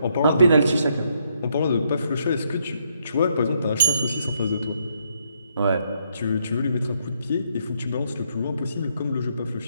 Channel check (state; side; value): inverted; both; correlation -0.74